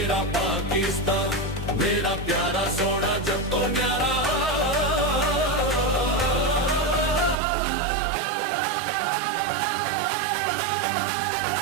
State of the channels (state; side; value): drops out; left; at 7.4 s